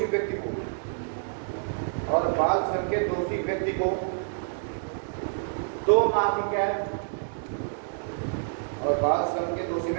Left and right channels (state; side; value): silent; left; digital silence